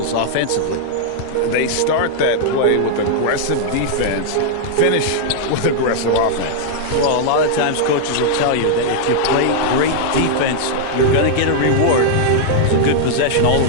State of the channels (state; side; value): different; both; correlation -0.01